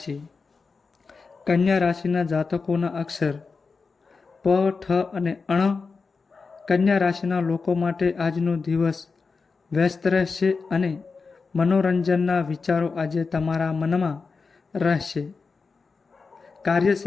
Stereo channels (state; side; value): quieter; right; 4.6 dB